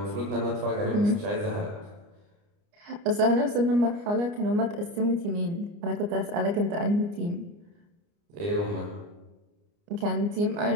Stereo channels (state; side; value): late; left; 29 ms